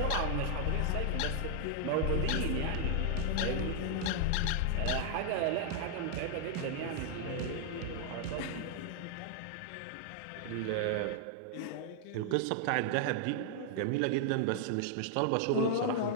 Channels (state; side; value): different; both; correlation 0.00